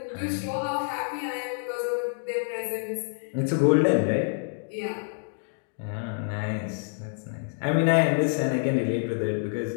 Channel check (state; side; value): silent; right; digital silence